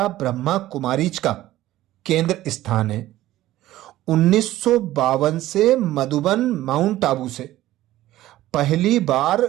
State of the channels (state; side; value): quieter; left; 15.1 dB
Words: ब्रह्मा कुमारीज का केंद्र स्थान है। 1952 से मधुबन माउंट आबू से पहली बार